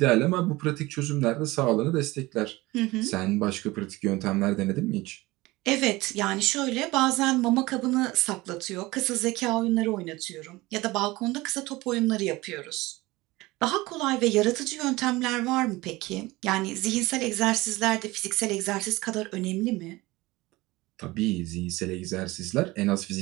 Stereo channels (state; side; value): quieter; left; 20.5 dB